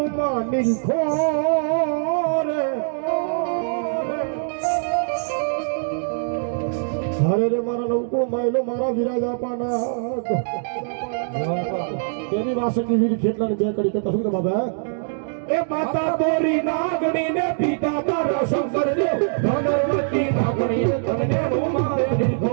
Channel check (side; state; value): left; silent; digital silence